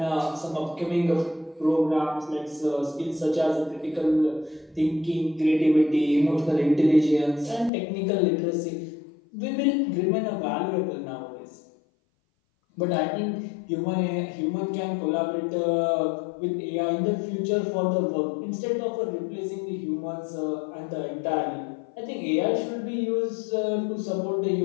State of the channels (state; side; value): drops out; right; at 7.7 s